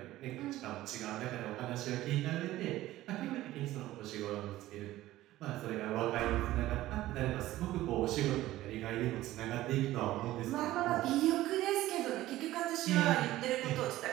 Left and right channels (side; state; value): left; quieter; 15.7 dB